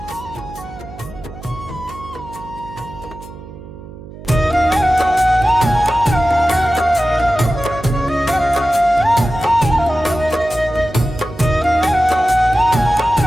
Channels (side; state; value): right; noise; hum, 16 dB below the sound